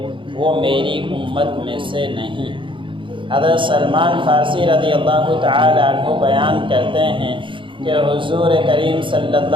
وہ میری امت میں سے نہیں۔ حضرت سلمان فارسی رضی اللہ تعالی عنہ بیان کرتے ہیں کہ حضور کریم صلی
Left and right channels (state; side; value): late; left; 0.24 ms